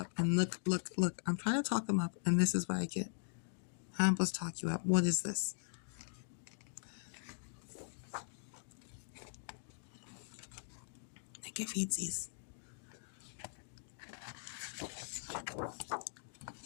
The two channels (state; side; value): silent; right; digital silence